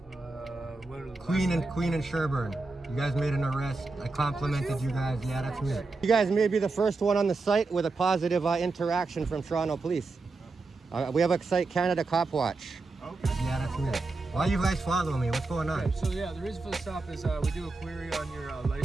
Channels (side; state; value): left; quieter; 3.6 dB